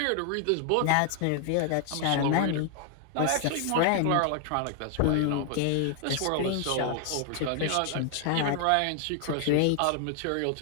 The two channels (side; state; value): both; different; correlation 0.00